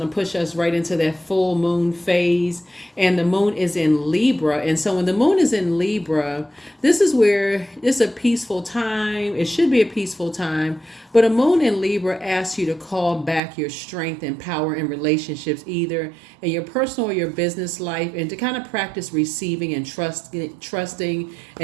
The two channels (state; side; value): drops out; left; at 13.4 s